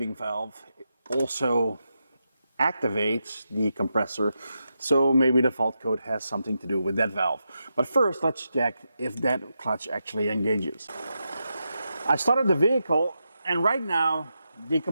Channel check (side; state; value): both; inverted; correlation -0.87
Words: valve also activates the compressor, so maybe the fault code has something to do with that valve. But first, let's check if that clutch actually engages. I started the vehicle, and right now, the